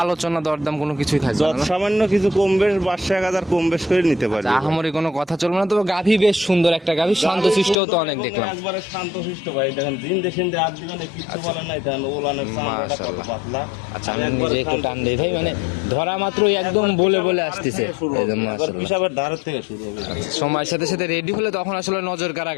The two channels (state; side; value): drops out; right; at 7.8 s